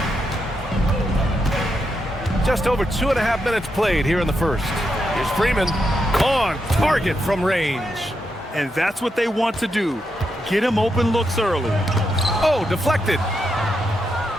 Just over 2.5 minutes played here in the first. Here's Freeman. On target from range. And that's what they want to do. Get him open looks early. Oh, deflected.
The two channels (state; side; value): normal; both; correlation 0.83